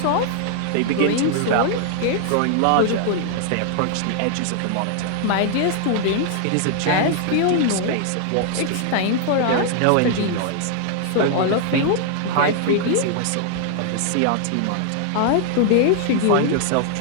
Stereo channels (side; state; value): both; different; correlation 0.00